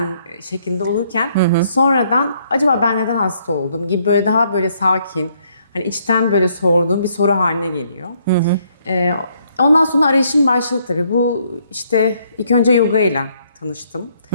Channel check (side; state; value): both; inverted; correlation -0.69